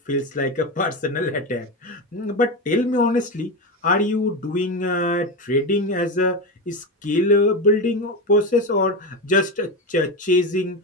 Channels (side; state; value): both; normal; correlation 0.17